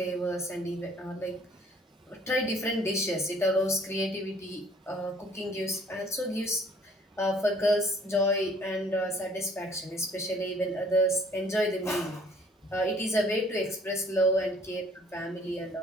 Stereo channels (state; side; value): normal; both; correlation 0.57